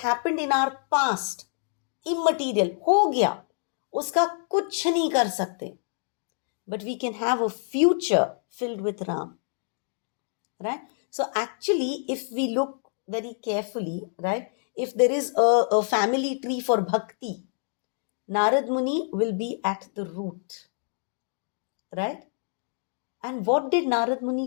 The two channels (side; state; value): right; silent; digital silence